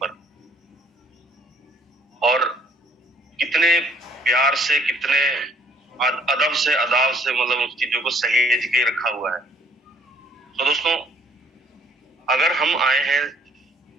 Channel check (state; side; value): normal; both; correlation 0.62